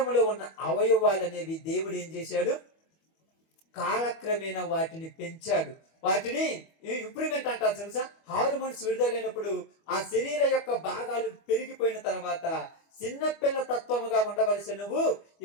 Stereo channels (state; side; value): late; right; 25 ms